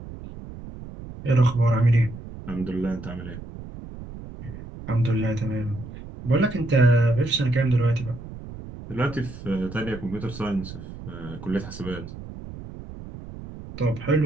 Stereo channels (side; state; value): right; noise; rumble, 13 dB below the sound